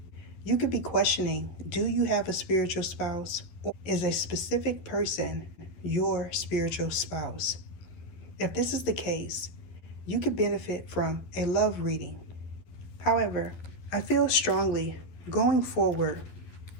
You could be questioning, do you have a spiritual spouse? Or is a specific person your spiritual spouse? If this is the case, you could benefit from a love reading. However, I feel strongly going forward,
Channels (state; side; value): late; right; 12 ms